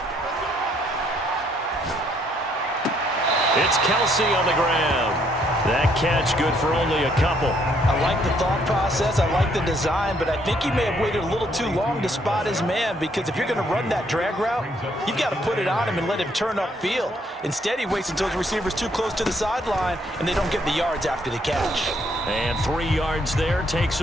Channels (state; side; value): normal; both; correlation 0.69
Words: It's Kelsey on the ground. That catch good for only a couple. I like the thought process. I like the design, but I think he may have waited a little too long to spot his man, because if you're going to run that drag route, you've got to put it on him and let him turn upfield. Instead, he waits until his receiver's too close to the sideline, and they don't get the yards after the catch. And 3 yards there takes